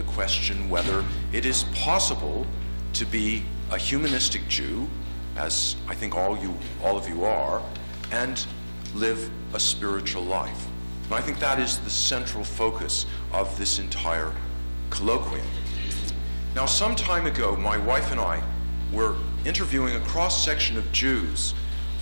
question whether it is possible to be a humanistic Jew, as I think all of you are, and live a spiritual life. And I think that is the central focus of this entire colloquium. Now, some time ago, my wife and I were interviewing a cross-section of Jews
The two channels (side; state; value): both; inverted; correlation -1.00